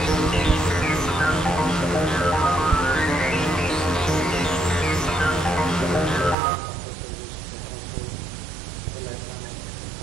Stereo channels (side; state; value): left; drops out; at 6.4 s